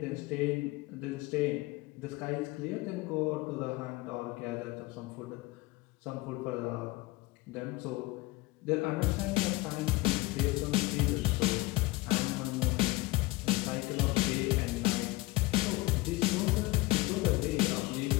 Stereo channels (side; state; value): right; quieter; 21.4 dB